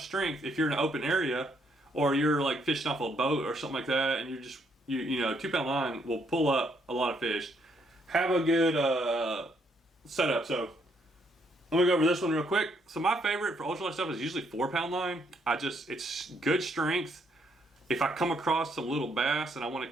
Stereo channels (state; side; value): normal; both; correlation 0.72